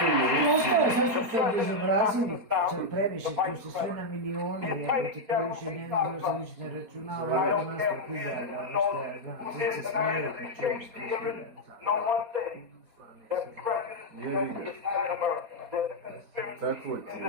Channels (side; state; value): left; late; 4.2 ms